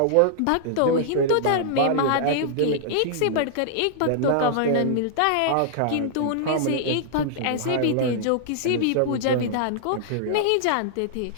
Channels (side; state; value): both; different; correlation -0.01